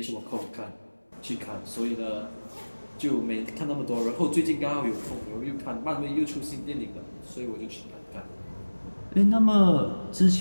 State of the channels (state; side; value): inverted; both; correlation -1.00